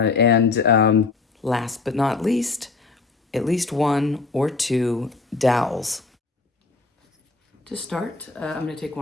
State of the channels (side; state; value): right; quieter; 4.0 dB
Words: last but not least, at least 1 or 2 dowels. To start, I'm going to take